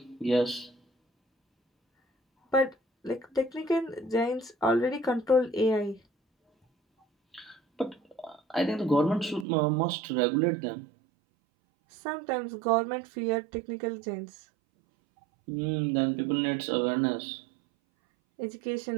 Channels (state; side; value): drops out; left; at 9.5 s